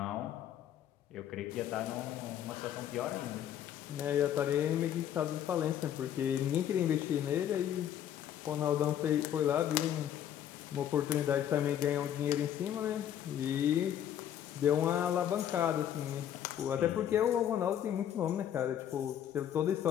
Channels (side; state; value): right; quieter; 10.3 dB